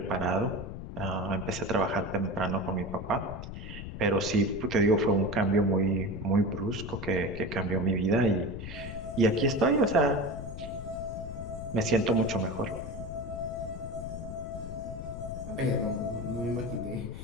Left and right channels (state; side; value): noise; left; rumble, 9 dB below the sound